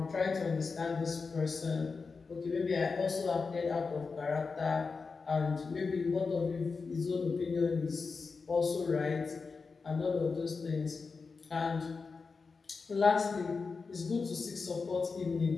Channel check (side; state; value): right; quieter; 4.6 dB